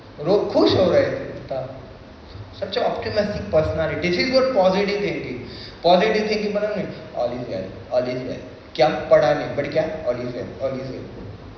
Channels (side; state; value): both; identical; correlation 1.00